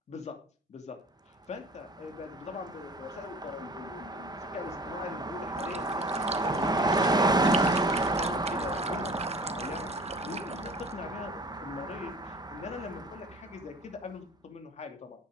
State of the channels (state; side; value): normal; both; correlation 0.45